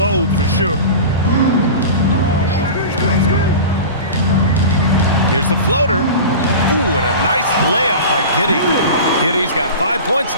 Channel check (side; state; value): both; inverted; correlation -0.32